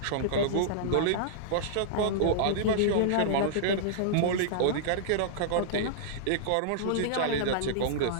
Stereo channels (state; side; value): different; both; correlation -0.02